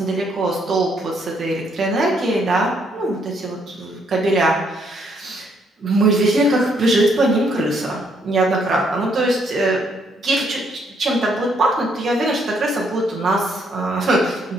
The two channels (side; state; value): both; normal; correlation 0.71